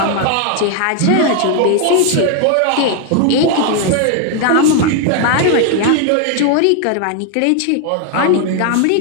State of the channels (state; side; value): different; both; correlation 0.00